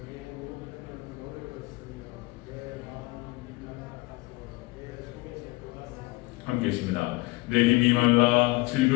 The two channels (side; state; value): right; quieter; 23.5 dB